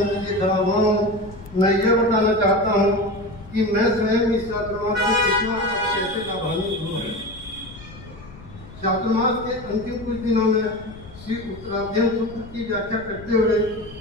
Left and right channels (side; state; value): left; noise; rumble, 18 dB below the sound